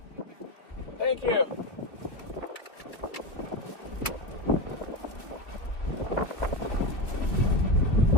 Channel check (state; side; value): late; right; 2.1 ms